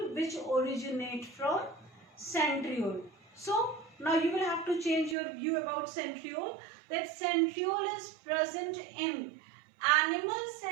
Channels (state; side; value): drops out; left; at 5.2 s